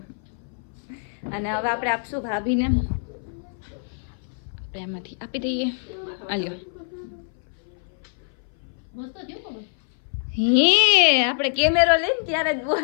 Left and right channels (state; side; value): silent; right; 59 dB below the other